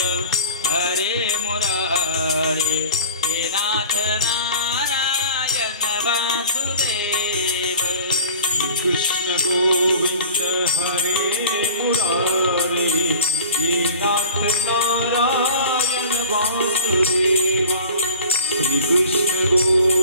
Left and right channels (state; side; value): inverted; both; correlation -0.39